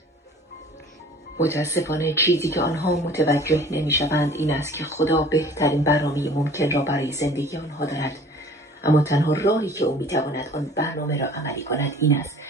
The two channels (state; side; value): normal; both; correlation 0.48